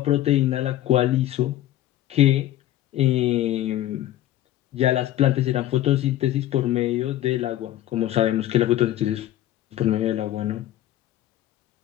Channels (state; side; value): quieter; right; 13.6 dB